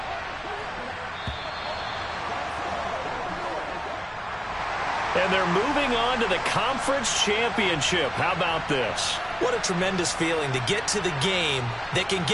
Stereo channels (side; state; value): both; identical; correlation 1.00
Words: And they're moving on to the conference championship. How about this? What a tremendous feeling to get to the game that can